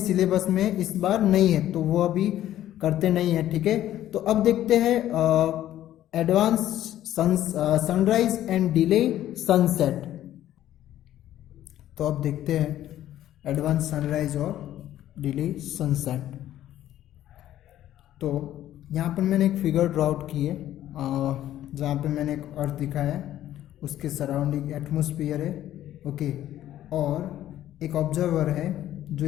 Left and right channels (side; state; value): right; quieter; 12.7 dB